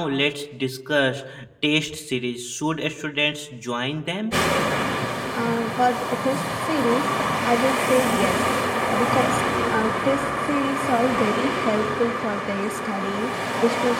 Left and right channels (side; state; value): both; identical; correlation 1.00